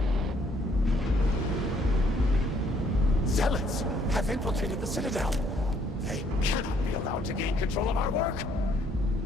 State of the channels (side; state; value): both; normal; correlation 0.66